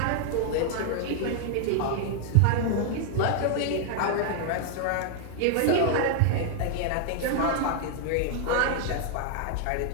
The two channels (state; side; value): different; both; correlation 0.00